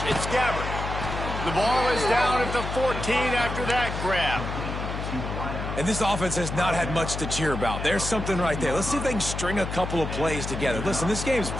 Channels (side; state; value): left; noise; hum, 5 dB below the sound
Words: It's Gabbert. The ball is down at the 14 after that grab. And this offense has not had much to cheer about. There's something right there. Let's see if they can string a couple of plays together. Listen, this game's